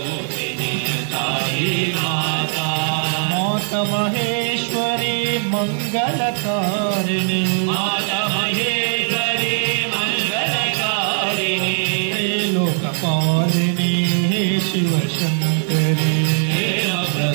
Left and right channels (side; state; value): left; silent; 61 dB below the other